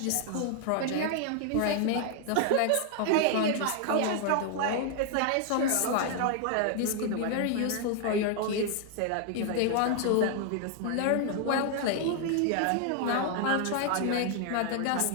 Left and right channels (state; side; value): different; both; correlation 0.00